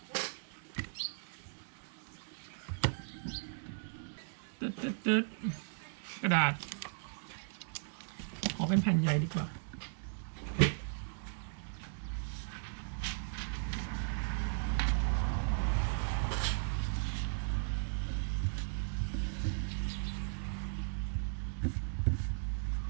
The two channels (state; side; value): silent; left; digital silence